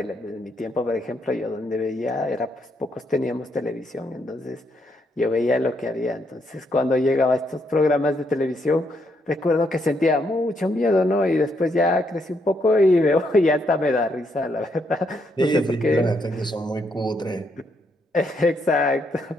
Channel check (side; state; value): both; normal; correlation 0.76